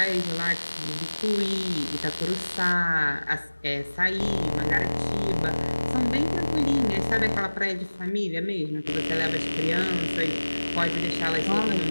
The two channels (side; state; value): both; inverted; correlation -1.00